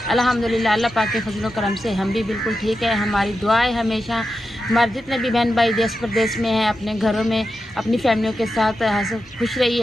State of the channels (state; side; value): normal; both; correlation 0.89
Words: अल्हम्दुलिल्लाह अल्लाह पाक के फजल करम से हम भी बिल्कुल ठीक है। हमारी दुआ है हमेशा हमारे जितने भी बहन भाई देश प्रदेश में हैं, अपने घरों में अपनी फैमिलियों के साथ खुश